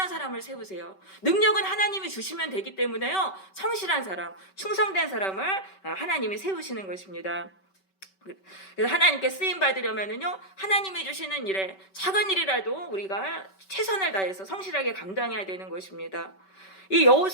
사람을 세우세요. 능력은 하나님이 주시면 되기 때문에요, 성실한 사람, 충성된 사람을 하나님이 세우시는 것입니다. 그래서 하나님께 쓰임 받으려면은요, 하나님이 주시는 일에 작은 일이라도 우리가 최선을 다해서 성실하게 감당해야 되는 것입니다. 이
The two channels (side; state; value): right; late; 5.2 ms